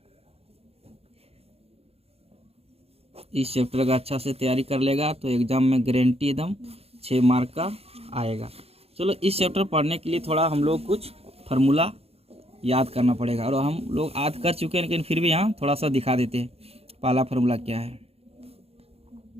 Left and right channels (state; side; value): late; left; 0.29 ms